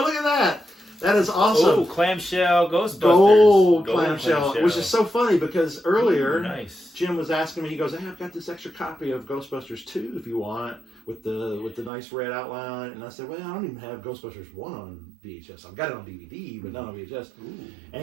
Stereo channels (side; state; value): left; drops out; at 11.9 s